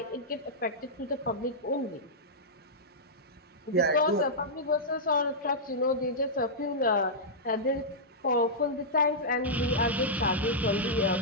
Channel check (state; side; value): normal; both; correlation -0.11